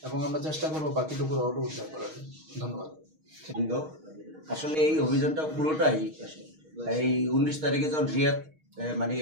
এবং আমরা চেষ্টা করবো বাকিটুকু রডও উদ্ধার করার। ধন্যবাদ। আসলে এই অভিযানটা পুরোটাই এই 19 তারিখে যখন রিয়াদ মানে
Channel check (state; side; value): late; left; 6.4 ms